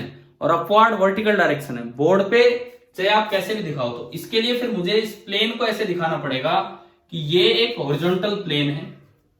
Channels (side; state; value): both; identical; correlation 1.00